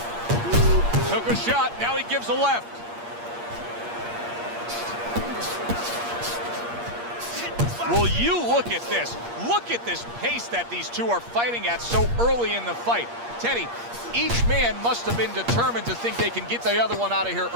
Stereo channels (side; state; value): left; late; 8.5 ms